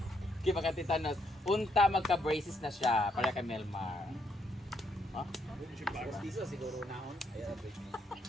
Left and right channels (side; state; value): both; normal; correlation 0.75